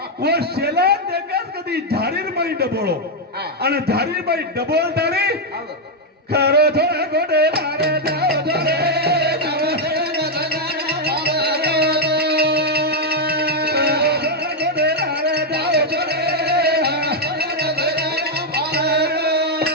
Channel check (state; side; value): normal; both; correlation 0.00